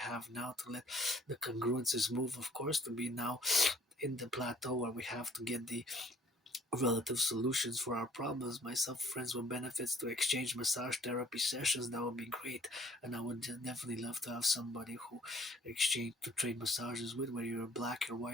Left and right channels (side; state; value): both; normal; correlation 0.57